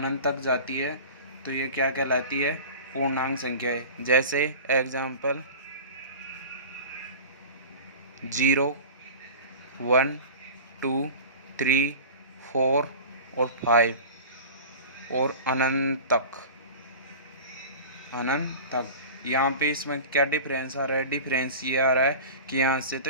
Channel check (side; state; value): both; inverted; correlation -0.36